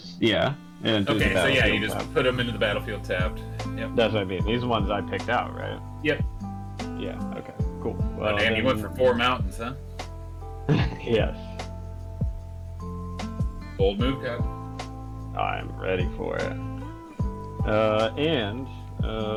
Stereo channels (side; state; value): both; identical; correlation 1.00